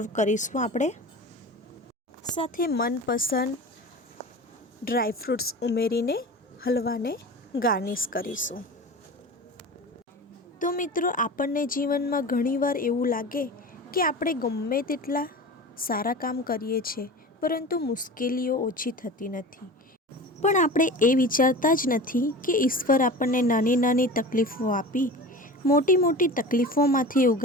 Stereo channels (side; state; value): both; normal; correlation 0.34